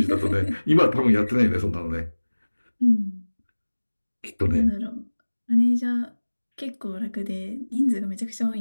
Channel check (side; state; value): both; inverted; correlation -1.00